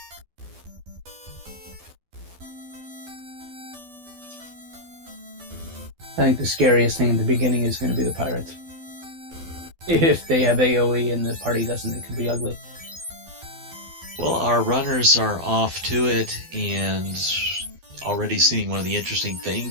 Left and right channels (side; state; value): left; late; 12 ms